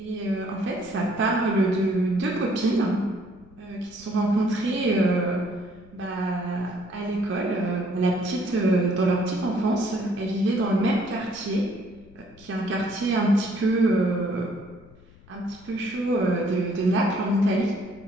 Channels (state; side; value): noise; left; rumble, 25 dB below the sound